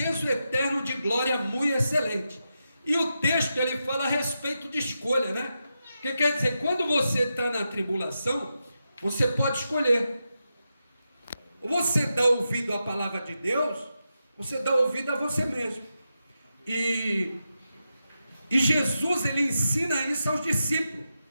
eterno de glória muito excelente. E o texto ele fala a respeito de escolha, né? Que quer dizer, quando você está na tribulação, você pode escolher. Ou você dá ouvido à palavra de Deus, você dá ouvido a você mesmo. E Jesus, ele ensina isso aos discípulos.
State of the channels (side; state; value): both; inverted; correlation -0.88